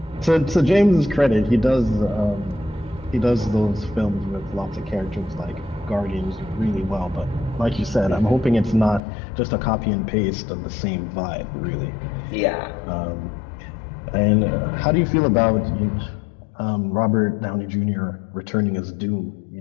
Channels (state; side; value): drops out; right; at 9.0 s